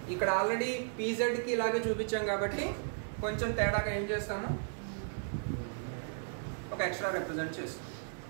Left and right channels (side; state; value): left; silent; digital silence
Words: ఇక్కడ ఆల్రెడీ pzకి ఇలాగే చూపించాం కాబట్టి కొంచెం తేడాగా ఏం చేస్తాము, ఒక ఎక్స్ట్రా రిప్రజెంట్ చేస్తాం.